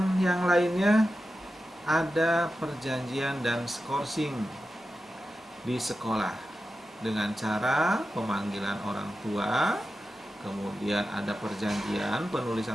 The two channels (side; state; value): both; normal; correlation 0.92